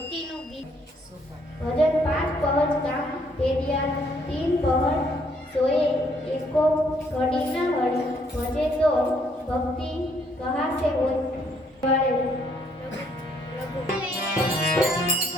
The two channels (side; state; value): both; normal; correlation 0.68